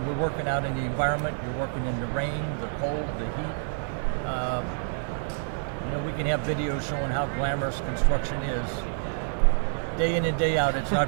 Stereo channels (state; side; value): silent; left; digital silence